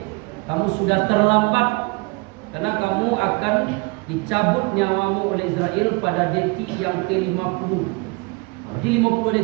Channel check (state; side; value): quieter; left; 28.1 dB